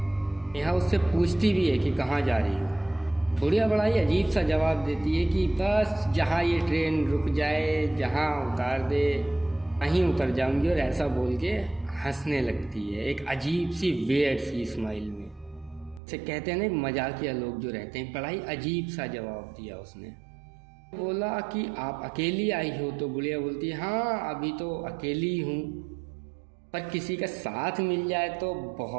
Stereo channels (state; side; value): drops out; left; at 16.0 s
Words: नेहा उससे पूछती भी है कि कहाँ जा रही हो। बुढ़िया बड़ा ही अजीब सा जवाब देती है कि बस जहाँ ये ट्रेन रुक जाए, जहाँ उतार दे वहीं उतर जाऊंगी, और ऐसा बोल के हंसने लगती है एक अजीब सी वियर्ड सी स्माइल में। इसे कहते हैं ना मजाकिया लोग जो रहते हैं, बड़ा ही अजीब सा जवाब दिया उसने। बोला कि आप अकेली आई हो? तो बुढ़िया बोलती है हाँ अभी तो अकेली हूँ, पर किसी का साथ मिल जाए तो